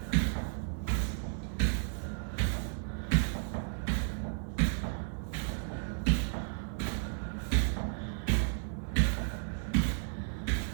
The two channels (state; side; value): silent; left; 55 dB below the other